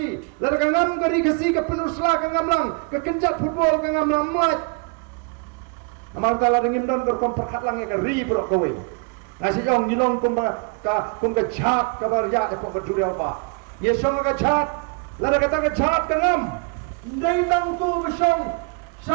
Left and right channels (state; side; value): quieter; left; 34.0 dB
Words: lar ka ngam kari kasi ka penusla ka ngamlang ka kenjat football ka ngamlang mat amal tala dengim don berkomperkat lang ka ri bro kowe ngasi jong jilong kumba ka jhat ka bar ya e pok duriau ba ye song ka jhat lada kata ke jahat kenam ndai tang tu besong